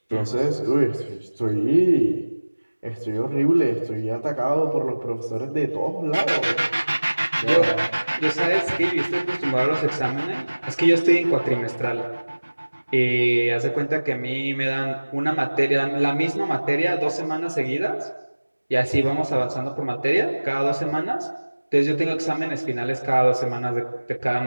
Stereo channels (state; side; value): inverted; both; correlation -1.00